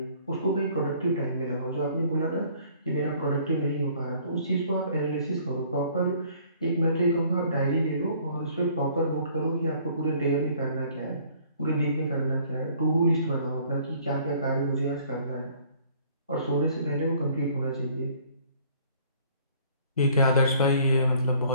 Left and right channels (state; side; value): inverted; both; correlation -0.57